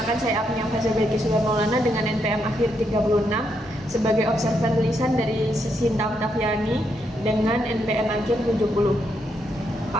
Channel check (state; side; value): normal; both; correlation 0.79